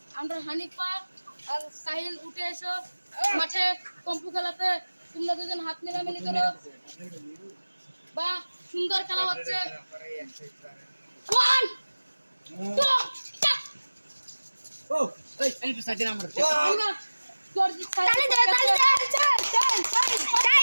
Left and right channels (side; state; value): both; inverted; correlation -1.00